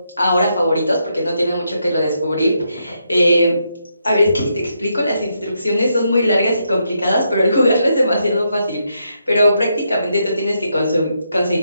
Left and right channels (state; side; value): inverted; both; correlation -0.80